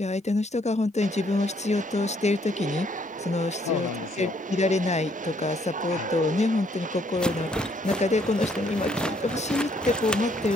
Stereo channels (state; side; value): normal; both; correlation 0.68